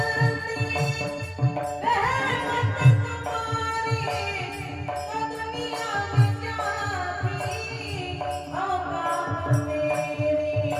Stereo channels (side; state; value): both; identical; correlation 1.00